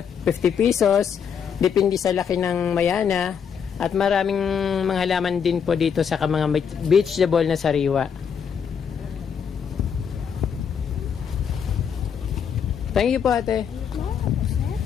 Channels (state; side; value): quieter; right; 7.3 dB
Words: 50 pesos. Depende sa laki ng mayana. At maraming mga halaman din po dito sa mga vegetable na sariwa. Thank you po, ate.